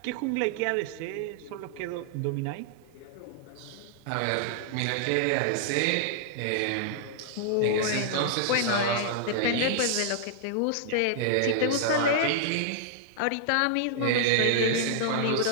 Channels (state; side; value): different; both; correlation -0.01